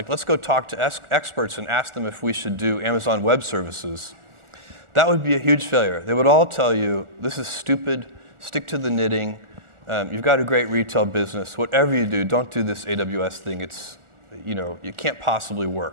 let's go talk to experts and ask them if we should do Amazon Web Services, that would be a huge failure. They would all tell you, this is stupid, stick to the knitting, you've got a great retail business, whatever you do, don't do this AWS thing, it's, you can't possibly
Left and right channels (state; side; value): late; left; 1.4 ms